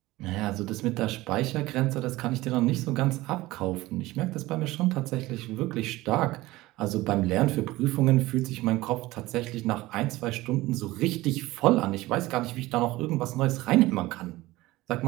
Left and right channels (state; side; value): quieter; left; 18.6 dB